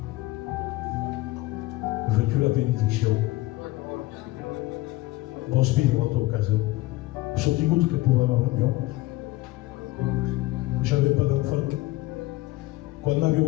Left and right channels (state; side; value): quieter; right; 18.6 dB